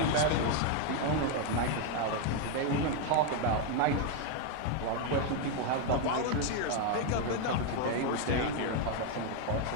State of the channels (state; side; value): different; both; correlation 0.01